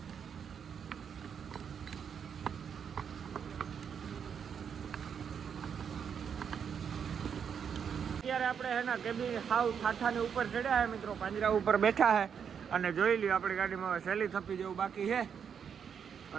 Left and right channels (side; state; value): left; quieter; 7.4 dB